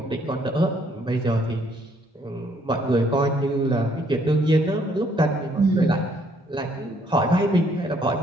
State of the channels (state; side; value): normal; both; correlation 0.66